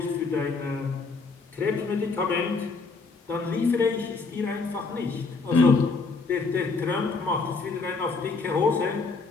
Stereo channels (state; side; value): quieter; right; 4.2 dB